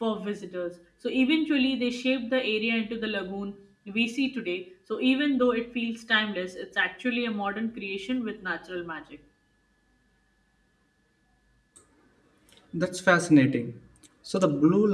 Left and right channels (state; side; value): identical; both; correlation 1.00